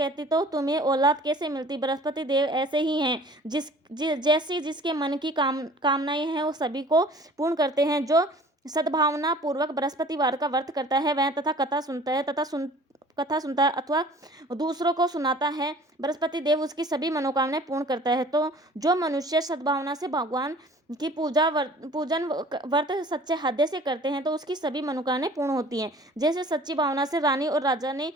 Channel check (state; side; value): normal; both; correlation 0.48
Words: तो तुम्हें औलाद कैसे मिलती। बृहस्पति देव ऐसे ही हैं, जैसी जिसके मन की कामनाएं हैं वो सभी को पूर्ण करते हैं। जो सद्भावना पूर्वक बृहस्पतिवार का व्रत करता है वह तथा कथा सुनता है अथवा दूसरों को सुनाता है, बृहस्पति देव उसकी सभी मनोकामनाएं पूर्ण करता है। तो जो मनुष्य सद्भावना से भगवान की पूजन व्रत सच्चे हृदय से करते हैं तो उसकी सभी मनोकामनाएं पूर्ण होती हैं। जैसे सच्ची भावना से रानी और राजा ने